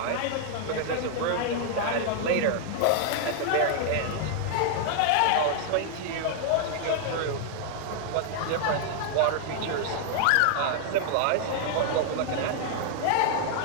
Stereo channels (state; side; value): different; both; correlation 0.00